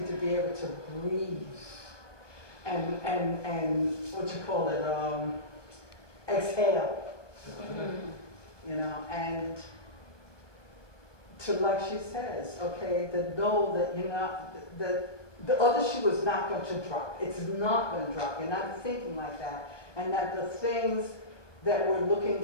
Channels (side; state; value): right; late; 1.2 ms